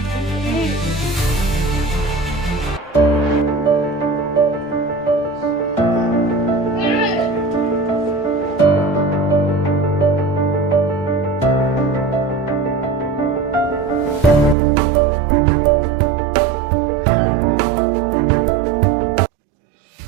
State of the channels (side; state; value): left; drops out; at 14.6 s